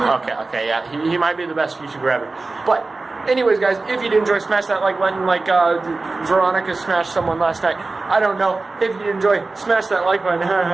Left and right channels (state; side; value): quieter; left; 3.5 dB